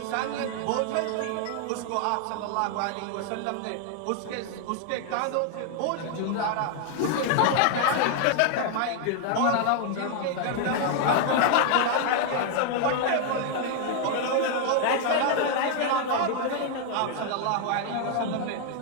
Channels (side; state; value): both; different; correlation 0.00